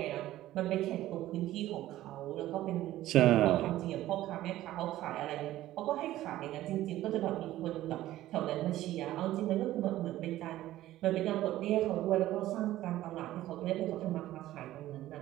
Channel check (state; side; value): quieter; left; 14.7 dB